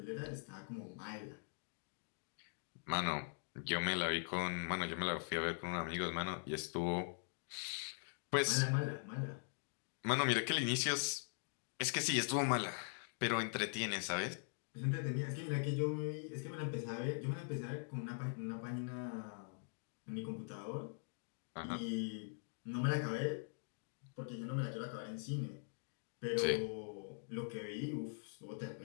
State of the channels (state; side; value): silent; right; digital silence